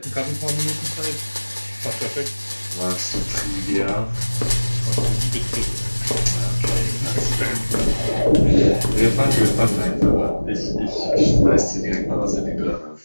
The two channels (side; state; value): both; inverted; correlation -1.00